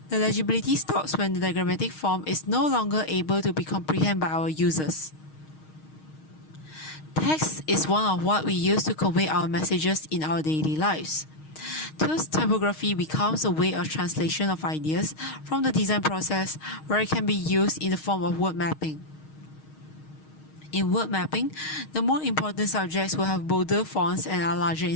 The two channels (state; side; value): late; right; 6.4 ms